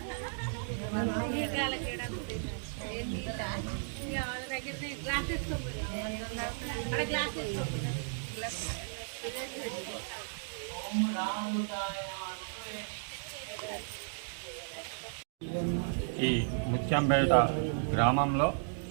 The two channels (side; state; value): left; silent; digital silence